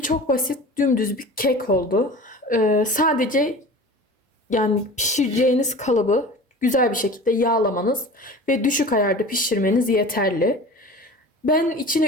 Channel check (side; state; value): both; normal; correlation 0.38